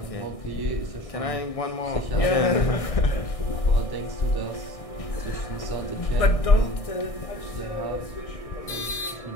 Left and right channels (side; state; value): right; late; 1.6 ms